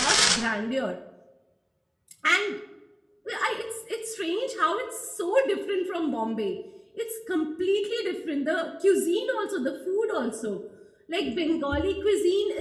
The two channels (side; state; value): both; identical; correlation 1.00